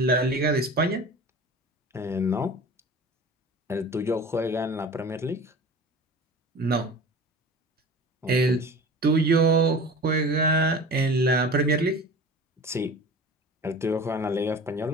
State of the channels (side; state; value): both; normal; correlation 0.38